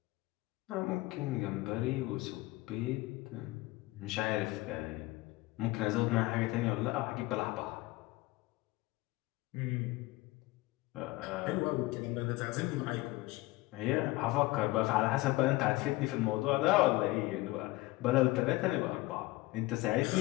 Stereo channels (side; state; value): right; quieter; 19.8 dB